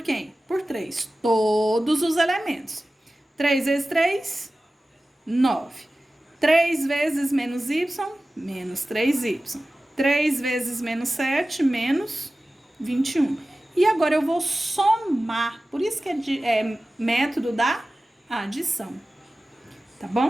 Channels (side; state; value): both; normal; correlation 0.96